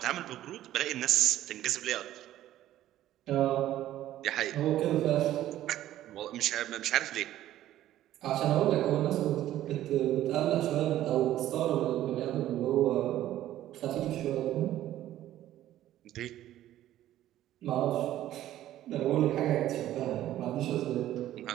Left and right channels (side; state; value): left; quieter; 13.3 dB